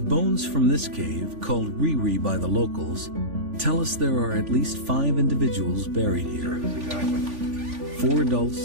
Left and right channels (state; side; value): late; left; 3.5 ms